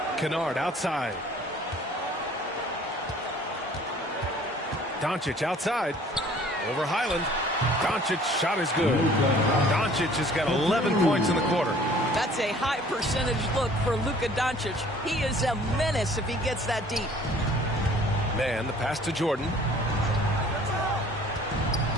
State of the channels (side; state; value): both; normal; correlation 0.53